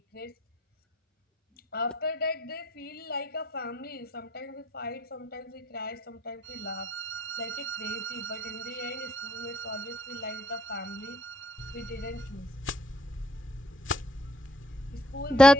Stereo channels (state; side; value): normal; both; correlation 0.66